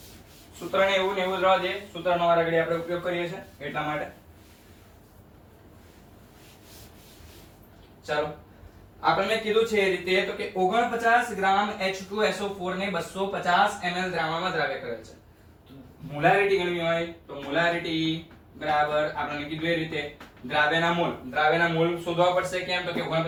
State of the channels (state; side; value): identical; both; correlation 1.00